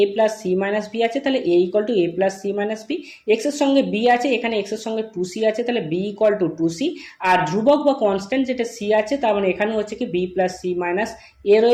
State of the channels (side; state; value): both; identical; correlation 1.00